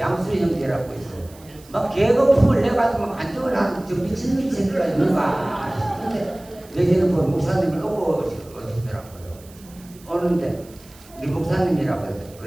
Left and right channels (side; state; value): right; noise; hiss, 24 dB below the sound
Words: 형제라고 있어. 막 계급품을 내가지고 막 안정을 하는 저 미친 새끼가 있는가 싶은데 내지는 뭐 목사님을 놓고 오시더라고요. 오는데 우리 목사님이라고